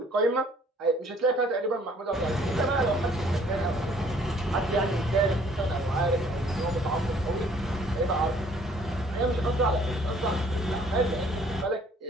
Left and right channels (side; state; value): both; normal; correlation 0.59